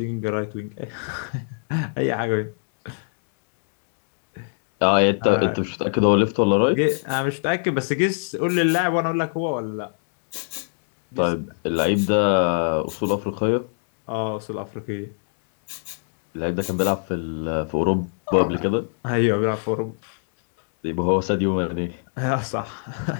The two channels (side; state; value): right; silent; digital silence